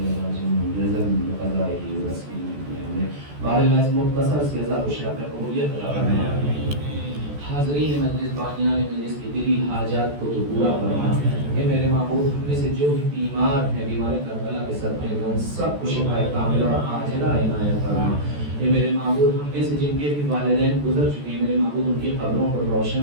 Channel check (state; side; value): late; left; 14 ms